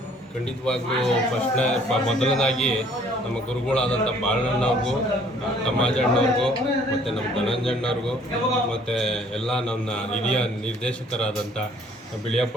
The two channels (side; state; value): both; normal; correlation 0.58